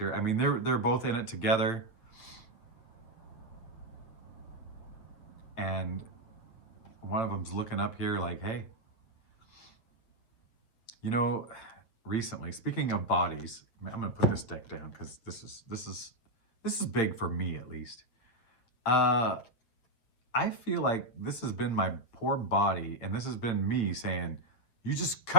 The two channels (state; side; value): late; right; 8.5 ms